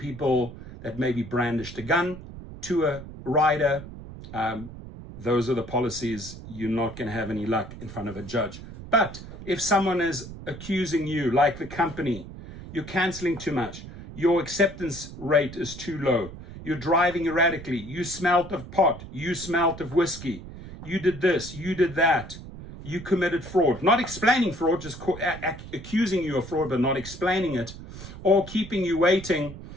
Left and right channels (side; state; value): right; noise; rumble, 13 dB below the sound